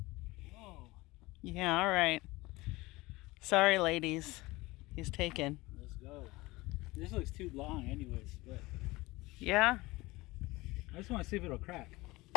Whoa. Yeah, all right. Sorry, ladies. He's taken. Let's go. This looks too long anyways, but Yeah. I just want to see if it'll crack.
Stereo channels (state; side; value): quieter; right; 21.0 dB